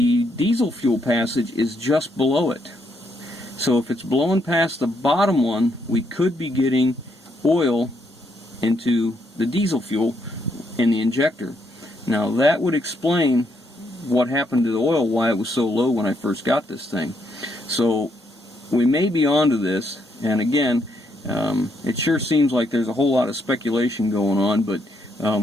diesel fuel passage is just below it. So if it's blowing past the bottom one, we could be getting oil into the diesel fuel in the injector. Now that would explain what happened to the oil, why it was so low when I first got this thing. So we may be onto this, and again, it sure seems like there's a whole lot of speculation going on, but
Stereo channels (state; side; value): normal; both; correlation 0.75